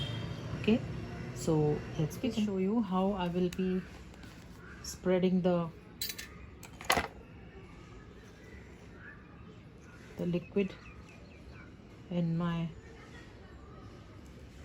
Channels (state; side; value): identical; both; correlation 1.00